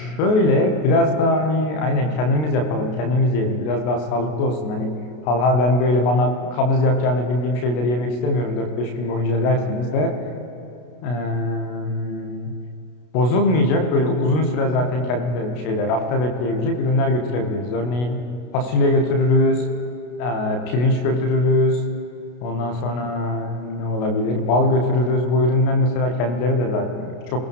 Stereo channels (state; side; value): late; right; 33 ms